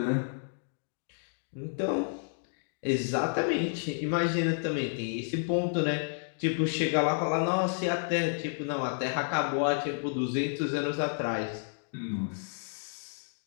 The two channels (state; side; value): silent; right; digital silence